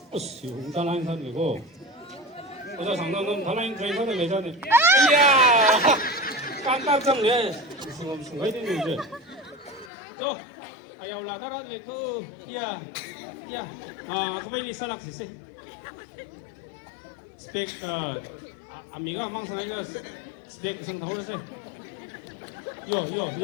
어씨, 달라인 선이고. 어제 장난은 달라인 저희 선을 내자네. 이야, 깜깜짝 내. 무슨 거 있는 이제. 저, 아유 라다라네 그, 이야. Ya, kembali salak sih. Spek, amiga mang sang iga spek sang tahu sih. Yo.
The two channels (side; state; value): right; drops out; at 9.9 s